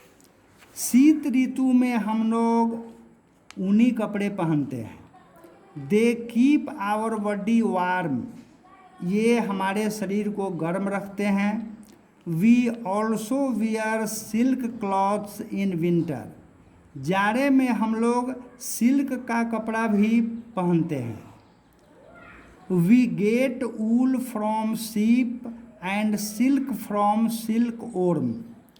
शीत ऋतु में हम लोग ऊनी कपड़े पहनते हैं। They keep our body warm, ये हमारे शरीर को गर्म रखते हैं। We also wear silk clothes in winter, जाड़े में हम लोग सिल्क का कपड़ा भी पहनते हैं। We get wool from sheep and silk from silkworm,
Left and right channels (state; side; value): identical; both; correlation 1.00